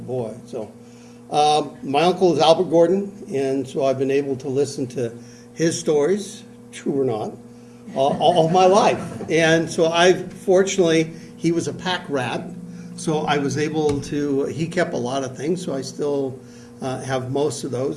boy. So, my uncle is Albert Gordon, and so I've been able to listen to his stories, true or not, all my life. And so fortunately, he was a pack rat, so I was able to, he kept a lot of things, so I still have most of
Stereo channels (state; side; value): identical; both; correlation 1.00